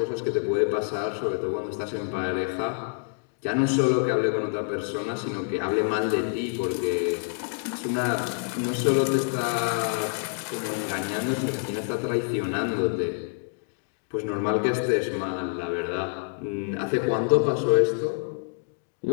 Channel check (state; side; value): silent; right; digital silence